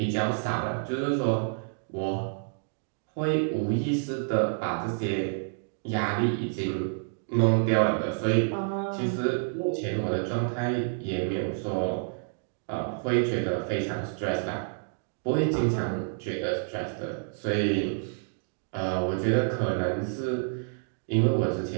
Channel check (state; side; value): silent; left; digital silence